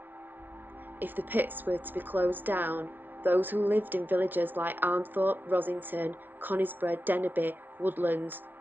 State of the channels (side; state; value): left; late; 0.090 ms